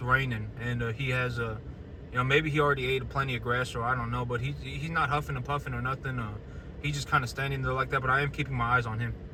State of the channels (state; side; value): identical; both; correlation 1.00